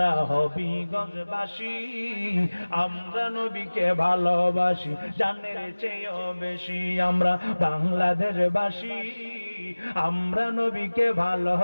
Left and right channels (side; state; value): both; inverted; correlation -1.00